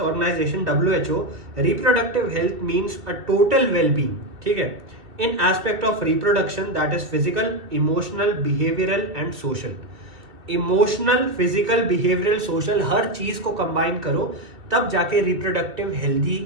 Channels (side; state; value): left; late; 2.1 ms